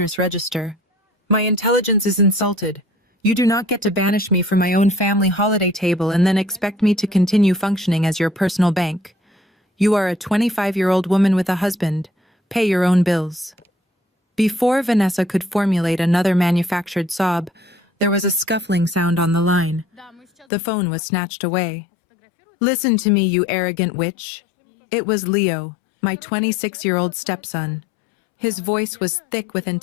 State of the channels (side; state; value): right; drops out; at 20.5 s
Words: register. My intelligence is insulted. You do not get to banish me from my own family holiday table and then expect me to continue functioning as your personal bank. You are a 25-year-old woman with a husband. Pay your own bills. Before Vanessa could formulate another manufactured sob, there was a scuffling sound on the line. The phone was snatched away. Listen to me, you arrogant witch. It was Leo, my 26-year-old stepson. His voice was thick with